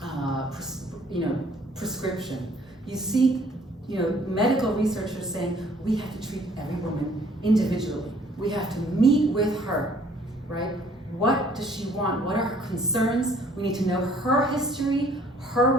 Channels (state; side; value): normal; both; correlation 0.59